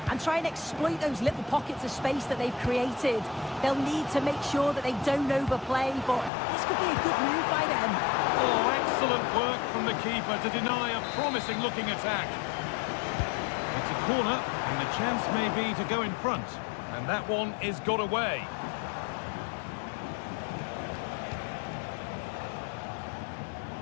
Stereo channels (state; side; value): drops out; right; at 6.3 s